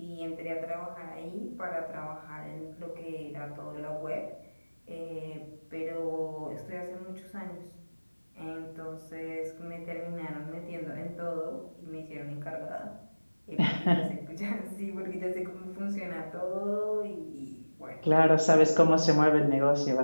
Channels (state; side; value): inverted; both; correlation -1.00